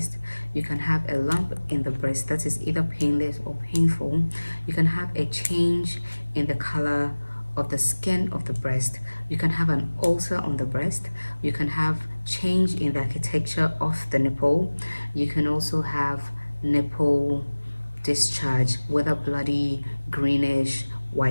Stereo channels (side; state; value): both; inverted; correlation -1.00